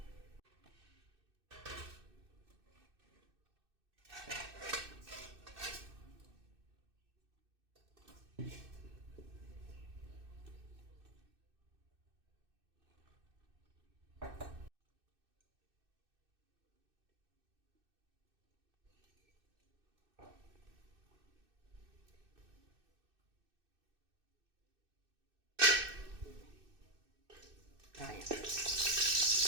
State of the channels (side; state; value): left; late; 2.6 ms